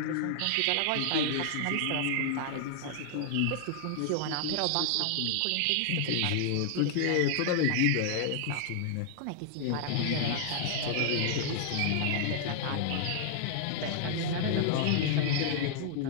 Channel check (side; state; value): both; different; correlation -0.01